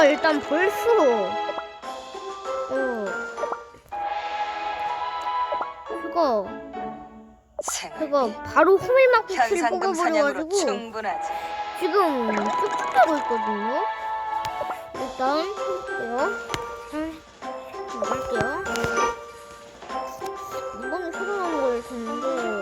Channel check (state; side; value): identical; both; correlation 1.00